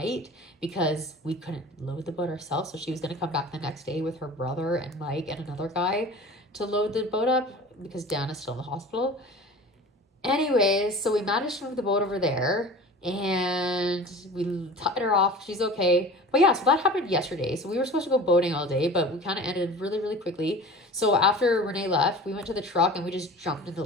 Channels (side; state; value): both; normal; correlation 0.39